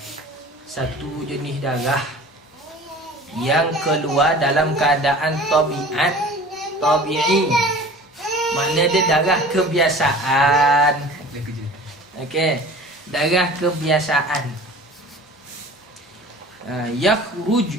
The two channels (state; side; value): normal; both; correlation 0.42